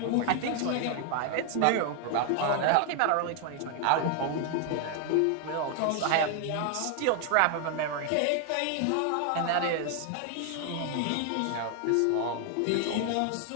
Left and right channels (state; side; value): different; both; correlation 0.00